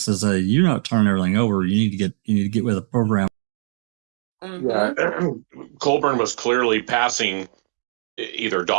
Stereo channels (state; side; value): silent; left; digital silence